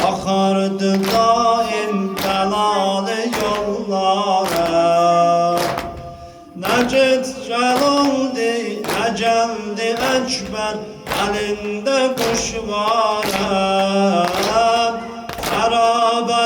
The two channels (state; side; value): identical; both; correlation 1.00